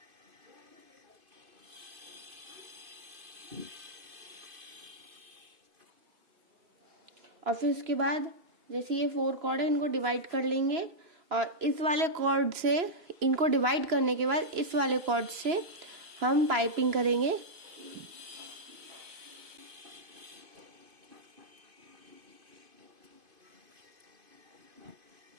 और फिर उसके बाद जैसे ये 4 कॉर्ड है इनको डिवाइड कर लेंगे और इस वाले कॉर्ड से, इनको डिवाइड करने के बाद इस वाले कॉर्ड से हम पाइपिंग करेंगे।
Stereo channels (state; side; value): late; left; 2.9 ms